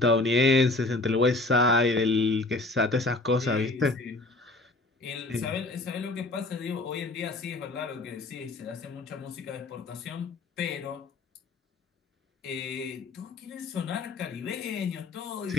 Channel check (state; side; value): quieter; right; 3.1 dB